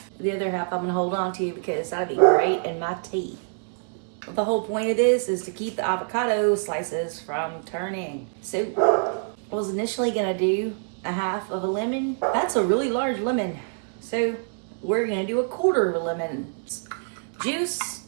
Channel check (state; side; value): silent; left; digital silence